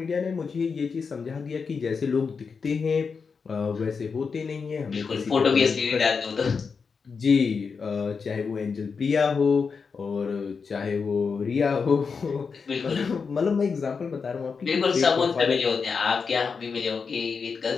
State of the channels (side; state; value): right; quieter; 5.4 dB